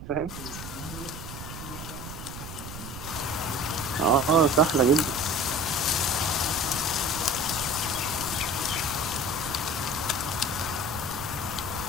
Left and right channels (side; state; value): right; noise; rumble, 11 dB below the sound